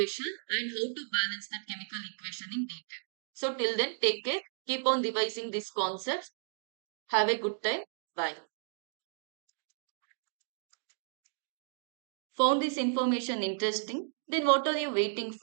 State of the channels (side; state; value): left; silent; digital silence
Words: and how to balance that chemical equation in detail. So till then, take care. Keep on revising these concepts. Have a good time. Bye. Found this information interesting? Then what are you waiting